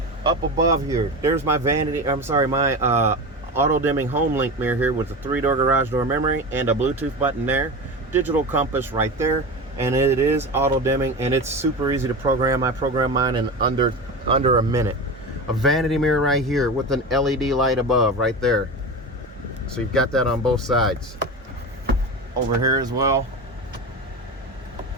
Up above here, there's my auto dimming home link mirror here with a 3-door garage door memory and a Bluetooth button there. Digital compass right there, and it is auto dimming, and it's super easy to program. I programmed mine in under a minute. A vanity mirror right here with an LED light above right there. So you've got that on both sides. Over here as well.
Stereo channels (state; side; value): normal; both; correlation 0.26